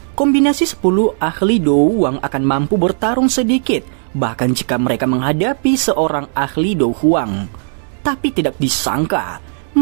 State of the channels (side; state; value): left; silent; digital silence